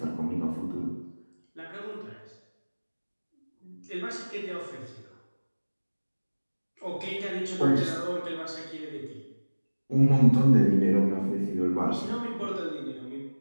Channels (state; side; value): inverted; both; correlation -1.00